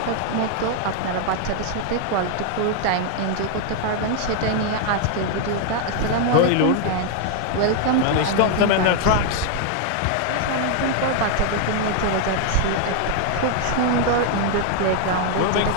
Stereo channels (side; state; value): both; different; correlation 0.00